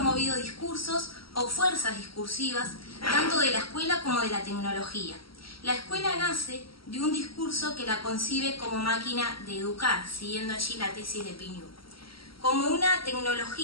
discursos o fuerzas discursivas, tanto de la escuela como de la tecnología. La escuela nace de un discurso que la concibe como máquina de educar, siguiendo allí la tesis de Pignou, como una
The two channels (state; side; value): late; right; 0.75 ms